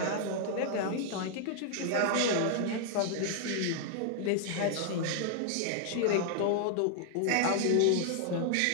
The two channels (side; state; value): both; different; correlation -0.01